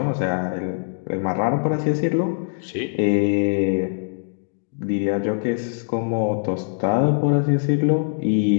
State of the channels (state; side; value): silent; right; digital silence